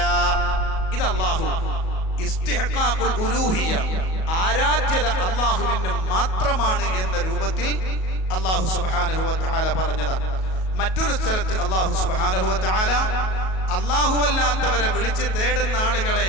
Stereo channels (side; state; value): right; late; 37 ms